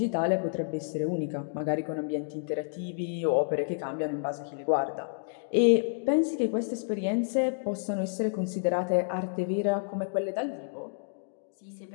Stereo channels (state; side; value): silent; right; digital silence